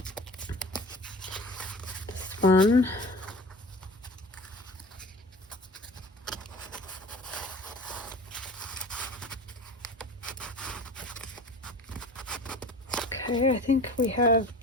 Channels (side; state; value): both; normal; correlation 0.39